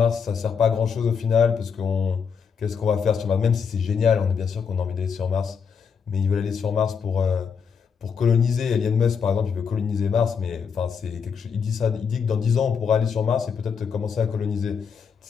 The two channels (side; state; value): right; quieter; 6.4 dB